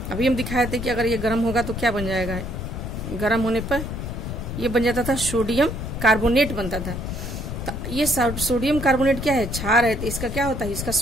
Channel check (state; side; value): noise; left; rumble, 6 dB below the sound